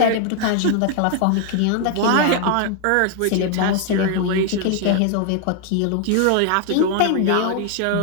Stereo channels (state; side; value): different; both; correlation 0.00